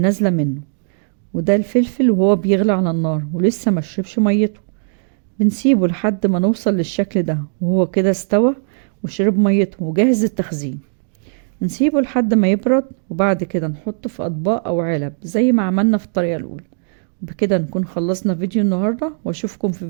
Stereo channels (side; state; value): left; silent; digital silence